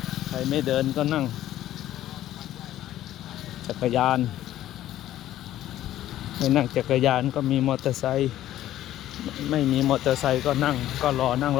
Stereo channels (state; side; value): quieter; right; 13.2 dB